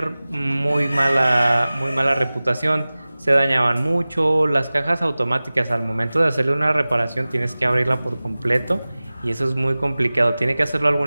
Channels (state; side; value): inverted; both; correlation -0.98